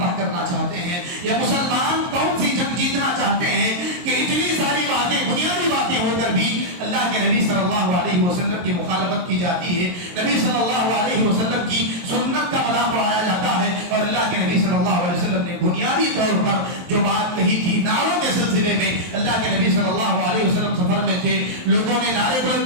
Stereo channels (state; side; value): late; left; 23 ms